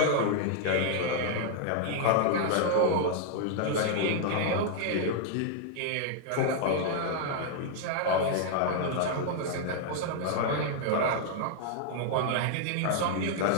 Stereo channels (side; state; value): both; different; correlation 0.00